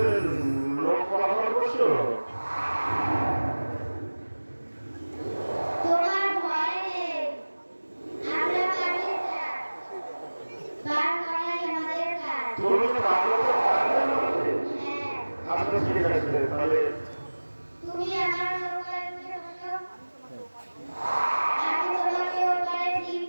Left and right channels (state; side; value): inverted; both; correlation -1.00